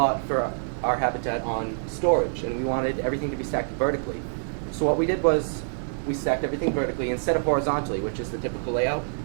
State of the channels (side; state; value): left; silent; 61 dB below the other